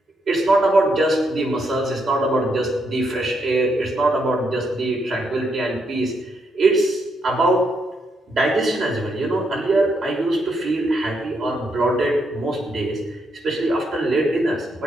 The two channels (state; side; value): normal; both; correlation 0.78